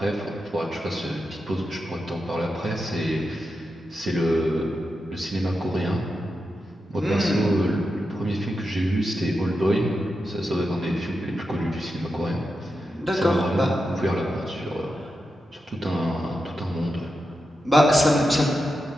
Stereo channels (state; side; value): normal; both; correlation 0.89